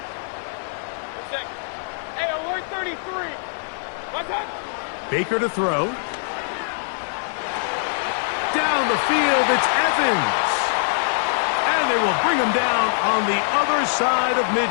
Hey, alert 33. What's up? Baker to throw. Down the field, it's Evans. And they will bring him down on the other side of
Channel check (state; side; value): silent; right; 55 dB below the other